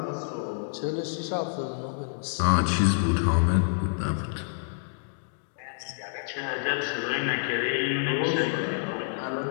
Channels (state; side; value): silent; right; digital silence